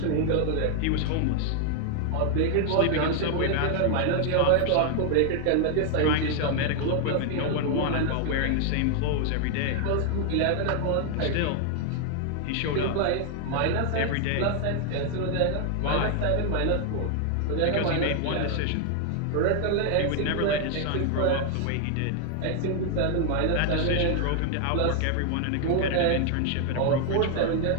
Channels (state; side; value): different; both; correlation 0.00